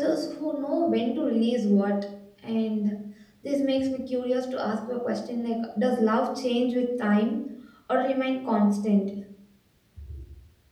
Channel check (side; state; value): both; identical; correlation 1.00